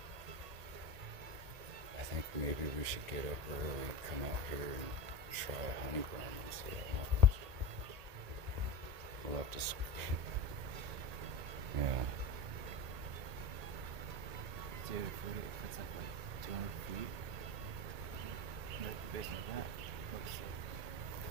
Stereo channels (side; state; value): left; late; 1.8 ms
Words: I think maybe we should get up early, come out here and try a honey ground and see what happens. We'll have to yeah. Dude, if it's like 200 feet, based on that,